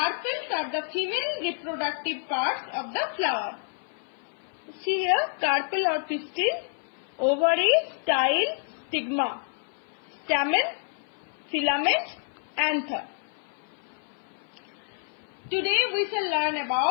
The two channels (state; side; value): silent; right; 55 dB below the other